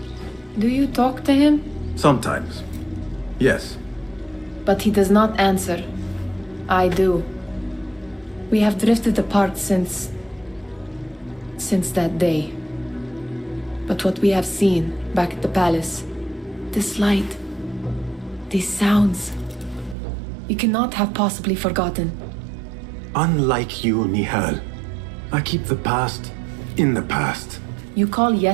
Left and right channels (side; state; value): left; drops out; at 20.0 s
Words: Do you talk to him? Sometimes. Yes. But he does not answer. I do. We have drifted apart since that day. But what we have seen back at the palace, this light, these sounds, you cannot have possibly forgotten. Unlike you, Nihal, I keep the past in the past. You call